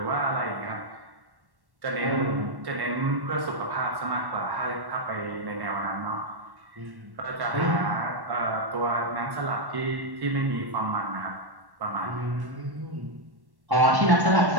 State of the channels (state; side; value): late; left; 1.1 ms